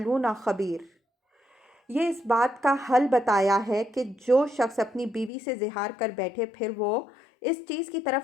خبیر۔ یہ اس بات کا حل بتایا ہے کہ جو شخص اپنی بیوی سے زہار کر بیٹھے پھر وہ اس چیز کی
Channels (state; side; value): drops out; right; at 5.3 s